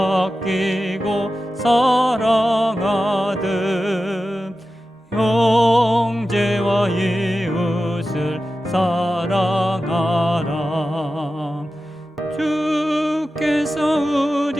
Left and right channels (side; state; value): both; normal; correlation 0.93